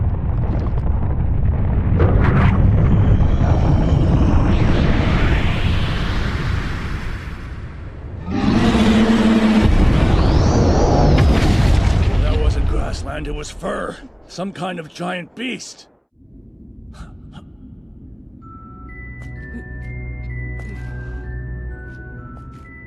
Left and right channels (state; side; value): identical; both; correlation 1.00